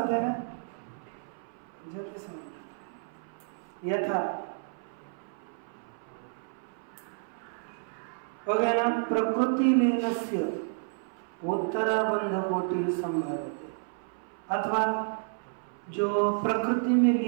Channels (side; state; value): left; silent; 57 dB below the other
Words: है ना, जल्दी समझ। यथा हो गया ना, प्रकृति लीनस्य उत्तराबंध कोटि संभाव्यते, अथवा जो प्रकृति में